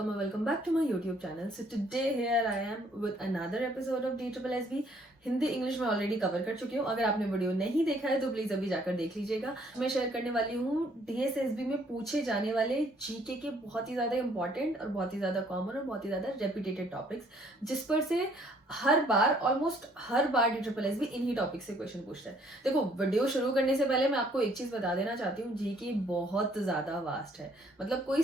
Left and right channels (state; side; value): normal; both; correlation 0.63